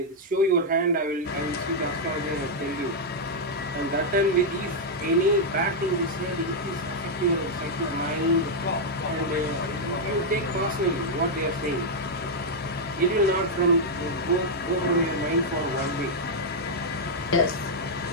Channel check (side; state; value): both; normal; correlation -0.03